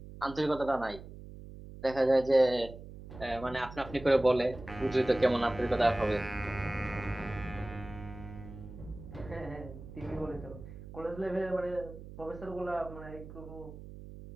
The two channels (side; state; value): right; noise; hum, 14 dB below the sound